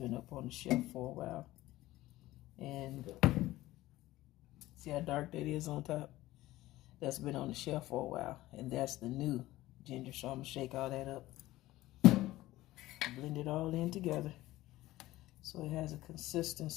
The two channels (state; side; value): quieter; right; 16.7 dB